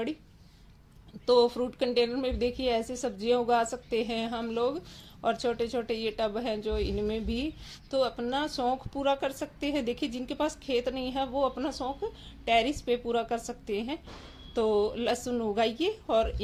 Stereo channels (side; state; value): both; identical; correlation 1.00